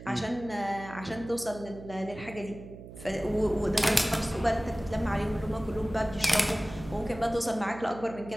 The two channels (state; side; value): noise; right; hum, 14 dB below the sound